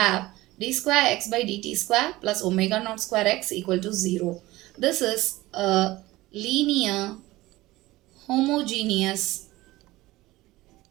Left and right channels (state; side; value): quieter; left; 18.4 dB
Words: d square x by dt square plus omega naught square x equal to 0. This is a linear homogeneous